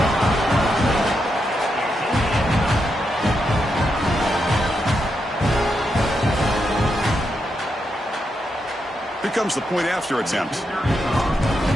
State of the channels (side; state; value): both; normal; correlation 0.83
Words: Here comes the point after attempt.